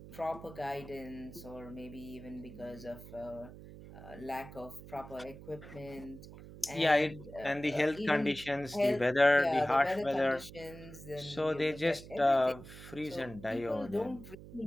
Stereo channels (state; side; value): noise; right; hum, 15 dB below the sound